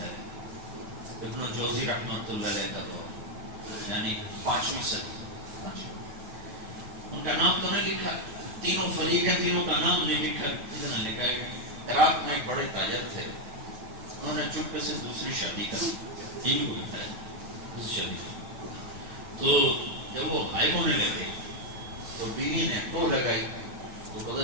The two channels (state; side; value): late; left; 9.4 ms